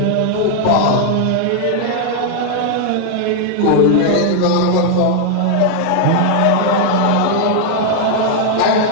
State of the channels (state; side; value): different; both; correlation 0.00